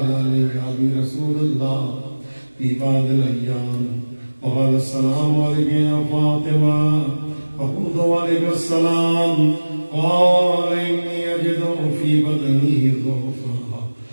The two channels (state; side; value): inverted; both; correlation -1.00